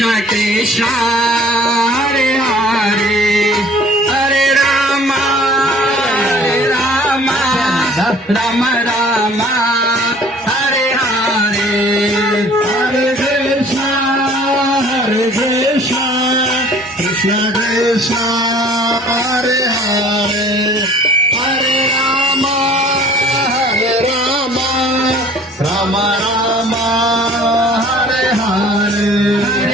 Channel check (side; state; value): both; normal; correlation 0.51